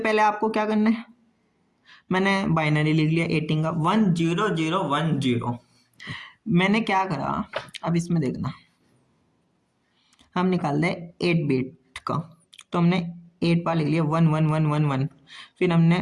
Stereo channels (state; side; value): identical; both; correlation 1.00